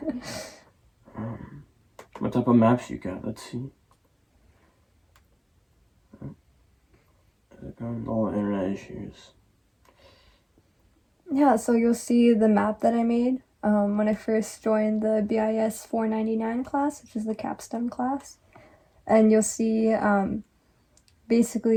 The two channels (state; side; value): identical; both; correlation 1.00